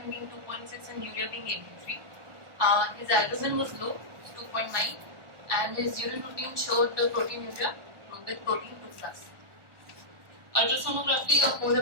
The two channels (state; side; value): late; left; 1.2 ms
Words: being 2.6 and urea being 83. His albumin was low, 2.9, and his urine routine showed proteinuria with protein 2+. Ultrasonography of whole